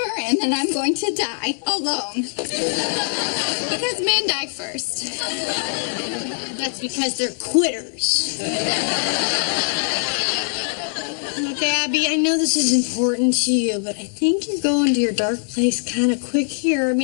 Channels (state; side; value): silent; right; digital silence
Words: and then I'm going to die alone. Because men die first. that's because they're quitters. Look, Abby, I know this is important to you, but I think you're going to your dark place kind of quick here. I